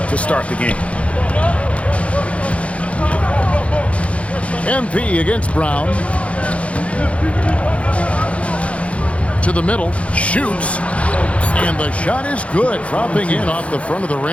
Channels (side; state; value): right; late; 0.063 ms